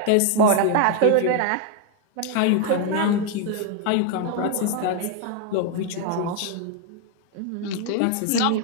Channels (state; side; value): different; both; correlation 0.00